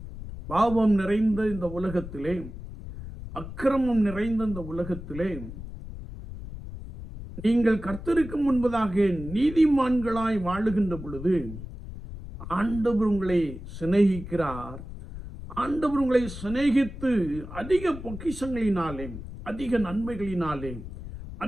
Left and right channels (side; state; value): left; noise; rumble, 11 dB below the sound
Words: பாவம் நிறைந்த இந்த உலகத்திலே, அக்கிரமம் நிறைந்த இந்த உலகத்திலே நீங்கள் கர்த்தருக்கு முன்பதாக நீதிமான்களாய் வாழுகின்ற பொழுது ஆண்டவர் உங்களை சிநேகிக்கிறார். ஆண்டவர் உங்களை சிநேகித்து அதிக பொக்கிஷங்களினாலே, அதிக நன்மைகளினாலே,